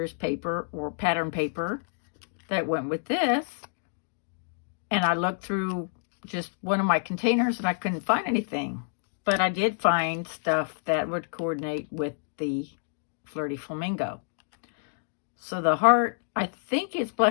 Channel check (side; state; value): right; silent; digital silence